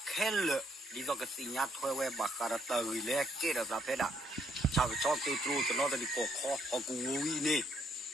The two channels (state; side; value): normal; both; correlation 0.71